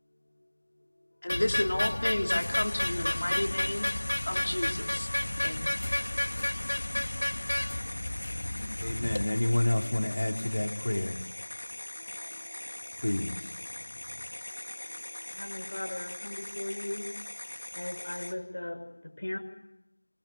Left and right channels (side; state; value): both; inverted; correlation -1.00